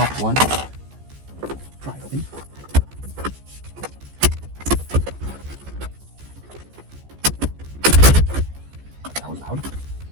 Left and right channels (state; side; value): late; left; 14 ms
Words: one, pry it open. That was loud.